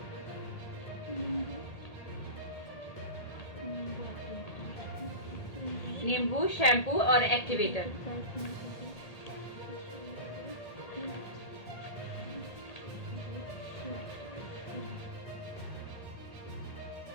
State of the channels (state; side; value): late; right; 1.8 ms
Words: नींबू, शैम्पू और एक्टिवेटर।